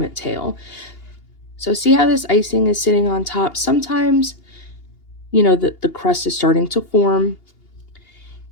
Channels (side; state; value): right; late; 2.8 ms